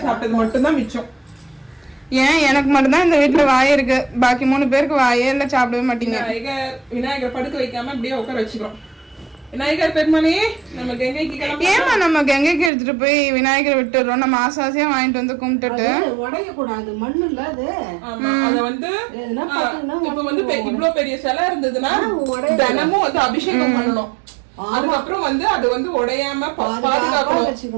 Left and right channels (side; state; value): left; drops out; at 12.7 s